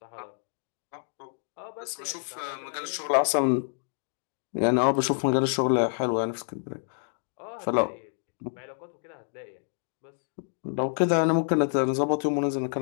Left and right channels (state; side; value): silent; right; digital silence